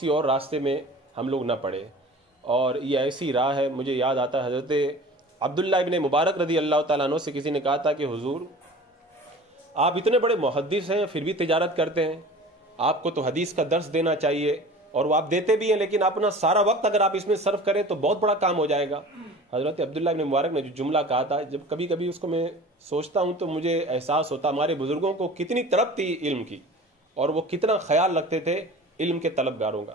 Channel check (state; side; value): normal; both; correlation 0.41